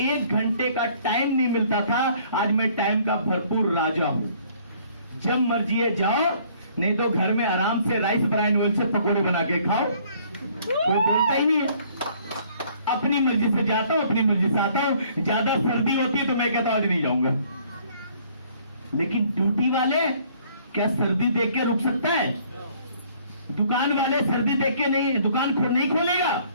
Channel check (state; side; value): inverted; both; correlation -0.60